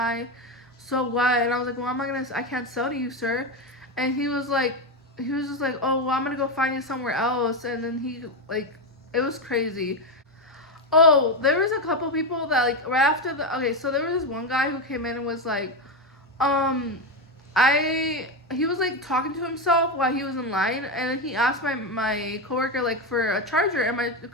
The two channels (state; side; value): normal; both; correlation 0.11